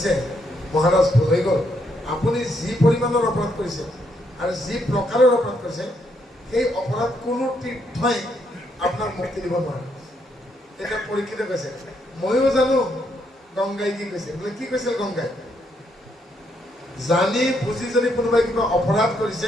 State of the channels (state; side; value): normal; both; correlation 0.75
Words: মহাৰাজ ভুল হৈ গ'ল, আপুনি যি পৰিমাণৰ অপৰাধ কৰিছে আৰু যি প্ৰকাৰৰ অপৰাধ কৰিছে, সেই অপৰাধ কোনো তীৰ্থই আপোনাক মুক্তি দিব নোৱাৰে। তেতিয়া পৰীক্ষিতে কৈছে, ময়ো জানো গংগাই কি কৈছে। বোলে কি কৈছিল গংগাই? জানি বুজি যদি কোনোবাই কিবা অপৰাধ